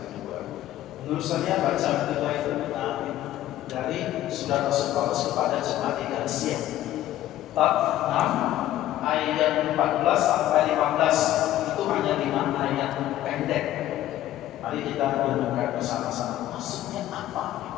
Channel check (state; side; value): quieter; right; 13.6 dB